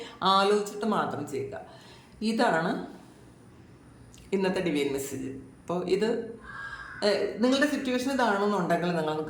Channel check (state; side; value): identical; both; correlation 1.00